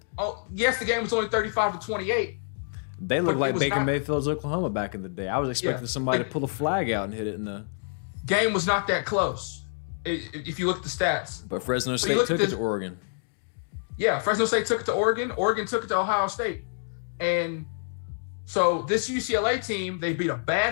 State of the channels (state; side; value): silent; right; digital silence